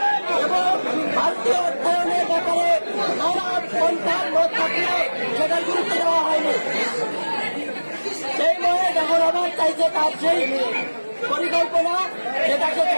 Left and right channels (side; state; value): both; inverted; correlation -1.00